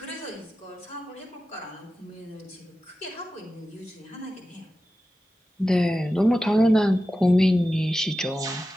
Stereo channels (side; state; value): both; normal; correlation 0.93